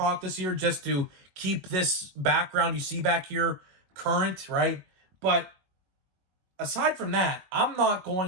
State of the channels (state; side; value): late; left; 21 ms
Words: this year, just to keep this background you see back here current, right? But aside from that, I'm not